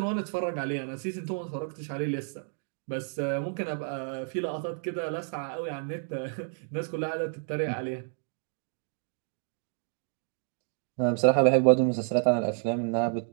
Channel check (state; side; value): silent; left; 58 dB below the other